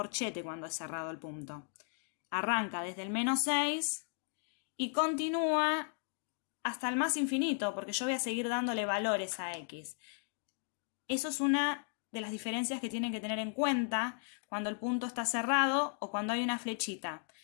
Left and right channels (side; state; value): right; silent; 54 dB below the other